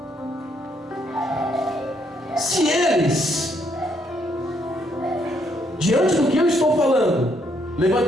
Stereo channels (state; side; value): normal; both; correlation 0.72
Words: Se eles, diante do que eu estou falando,